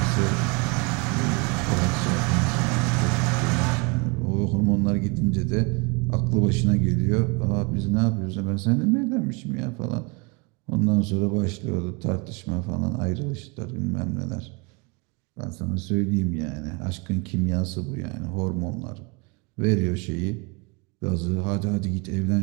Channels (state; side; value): quieter; left; 29.6 dB